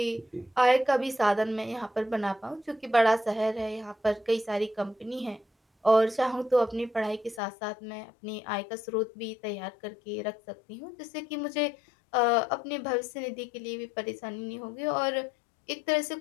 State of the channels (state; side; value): drops out; right; at 7.4 s